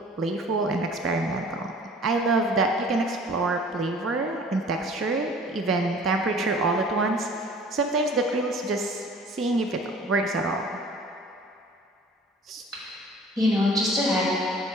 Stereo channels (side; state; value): both; normal; correlation 0.48